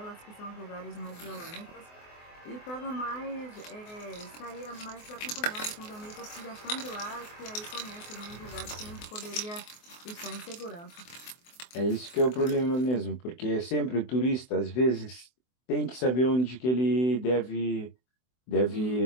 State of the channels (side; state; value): right; late; 24 ms